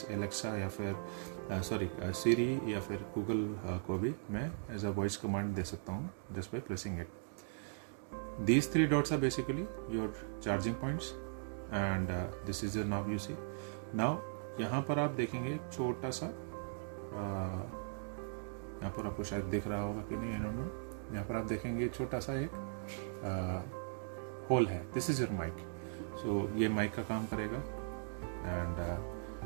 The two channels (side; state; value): left; silent; digital silence